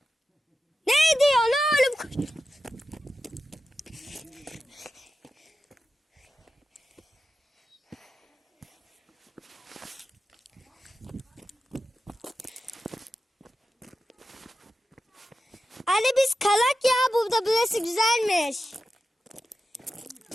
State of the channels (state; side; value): normal; both; correlation 0.91